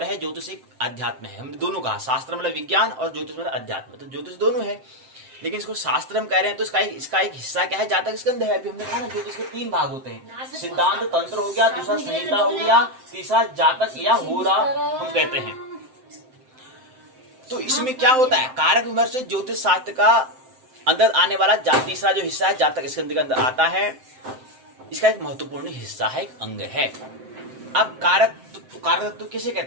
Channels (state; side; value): late; left; 7.7 ms